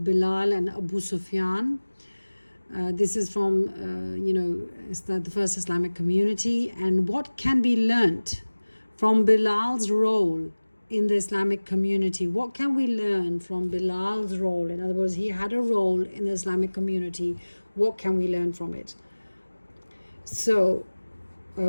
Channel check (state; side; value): inverted; both; correlation -1.00